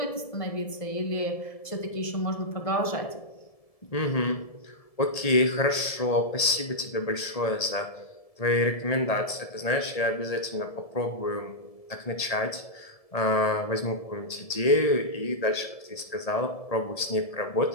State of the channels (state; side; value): late; right; 1.7 ms